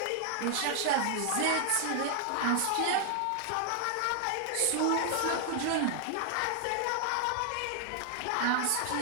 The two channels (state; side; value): different; both; correlation 0.00